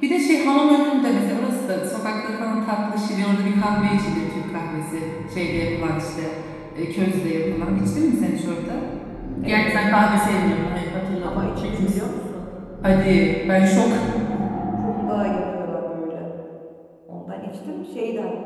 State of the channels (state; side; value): identical; both; correlation 1.00